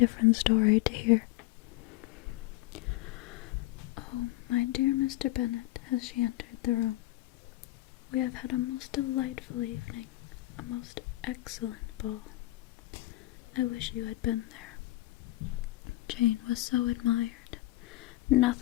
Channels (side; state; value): right; quieter; 18.0 dB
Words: story to hear. "Oh, my dear Mr. Bennet," as she entered the room, "we have had a most delightful evening, a most excellent ball. I wish you had been there. Jane was so admired.